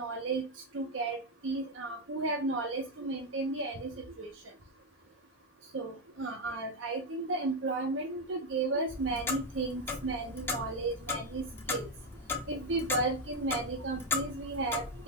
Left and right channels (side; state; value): both; normal; correlation 0.06